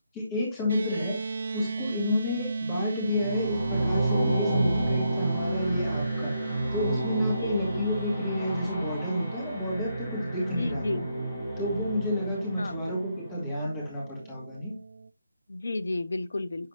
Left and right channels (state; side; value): inverted; both; correlation -0.78